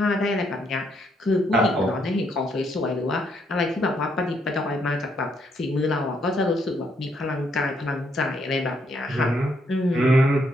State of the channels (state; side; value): normal; both; correlation 0.73